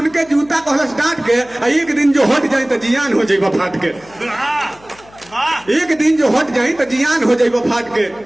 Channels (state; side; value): noise; left; hum, 26 dB below the sound